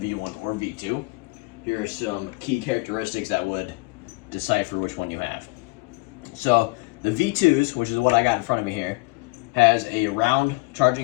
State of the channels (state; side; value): quieter; right; 25.8 dB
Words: or V2, here are some key characteristics that would decipher which one you have. So the V2s, which is what I got in front of me here, has a round